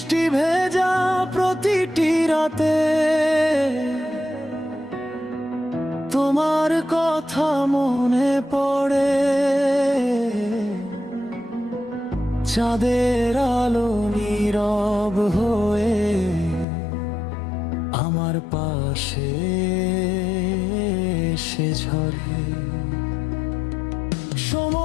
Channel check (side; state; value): right; drops out; at 16.7 s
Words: ভেজা প্রতিটি রাতে তোমার কথা মনে পড়ে। চাঁদের আলো নীরব হয়ে আমার পাশে এসে ঝরে।